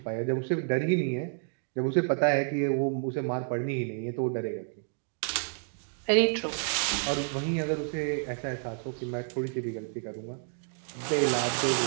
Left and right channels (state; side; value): silent; left; 58 dB below the other